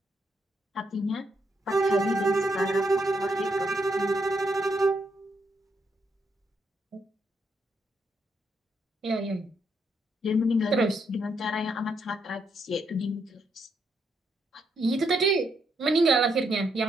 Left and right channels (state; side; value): normal; both; correlation 0.77